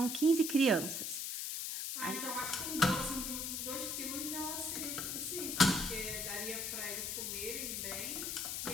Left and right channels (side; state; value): left; noise; hiss, 2 dB below the sound